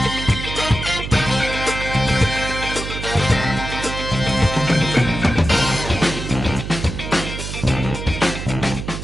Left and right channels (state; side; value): noise; right; hum, 7 dB below the sound